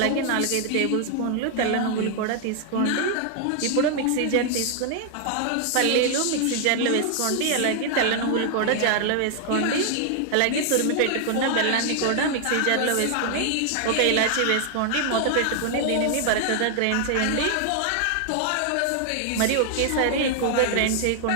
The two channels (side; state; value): both; different; correlation 0.00